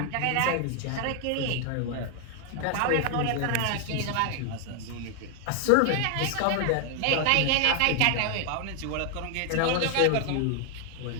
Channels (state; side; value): different; both; correlation 0.00